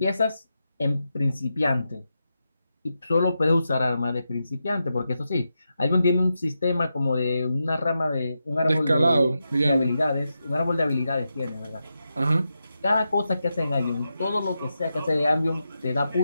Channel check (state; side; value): inverted; both; correlation -0.88